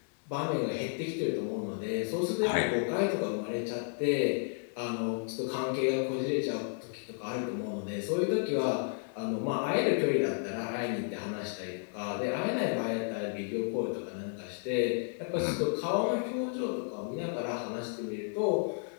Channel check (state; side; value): silent; right; 56 dB below the other